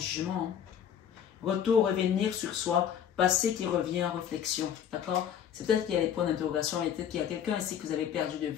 Retour, revenir sur soi, passé qui revient en réflexion. D'accord? C'est peut-être qu'il y a des points d'interrogation, et peut-être qu'il y a quelqu'un ici que vous avez perdu de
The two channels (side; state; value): right; quieter; 9.0 dB